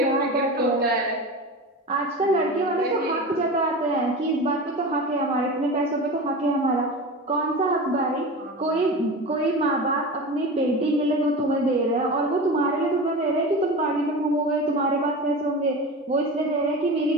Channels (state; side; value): normal; both; correlation 0.29